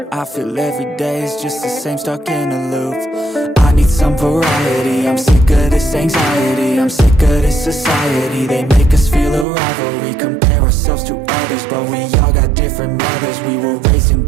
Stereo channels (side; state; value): left; drops out; at 9.5 s